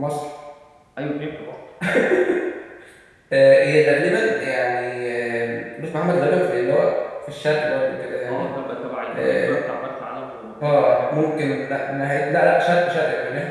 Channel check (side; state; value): both; identical; correlation 1.00